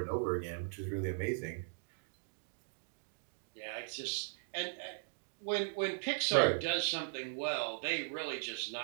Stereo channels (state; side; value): silent; left; digital silence